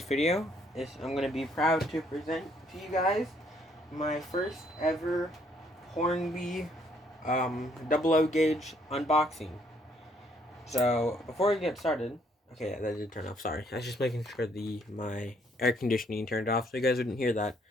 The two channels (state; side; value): normal; both; correlation 0.67